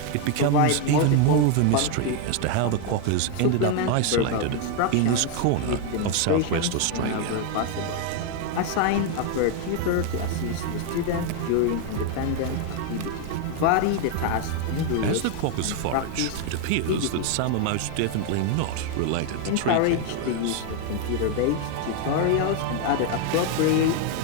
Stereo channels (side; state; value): both; different; correlation 0.01